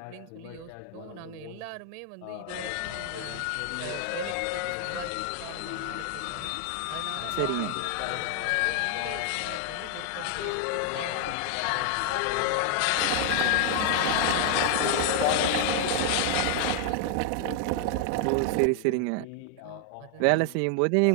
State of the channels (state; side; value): different; both; correlation 0.00